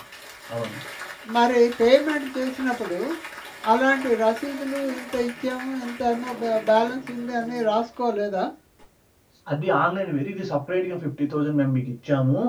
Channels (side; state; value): both; identical; correlation 1.00